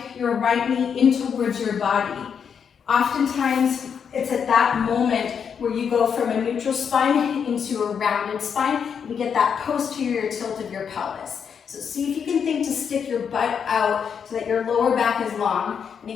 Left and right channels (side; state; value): right; quieter; 7.1 dB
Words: your right knee in towards your body, oftentimes it's at that moment where you go from a neutral spine into a rounded spine. And you get that posterior tilt of your pelvis. So see if you can think to stick your butt out so that your lower back is long. And